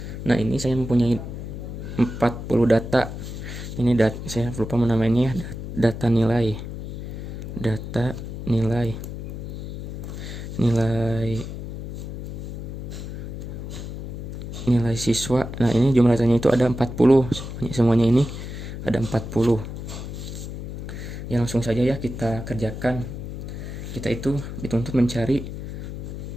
Nah, ini saya mempunyai 40 data. Ini saya lupa menamainya ya. Data nilai. Data nilai nilai siswa. Nah, ini jumlah datanya itu ada 40. Semuanya ini ada 40. Ya, langsung saja ya kita kerjakan. Kita itu dituntut mencari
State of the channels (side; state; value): left; noise; hum, 8 dB below the sound